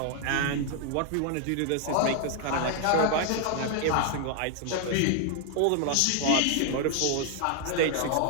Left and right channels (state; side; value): different; both; correlation 0.00